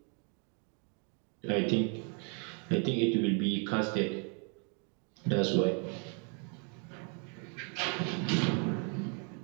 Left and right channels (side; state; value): left; quieter; 38.5 dB